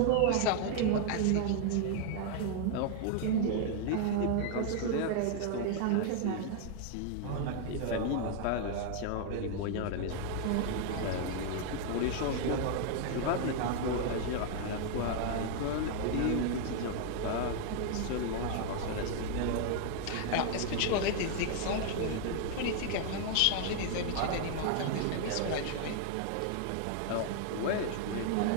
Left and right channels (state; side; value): different; both; correlation 0.00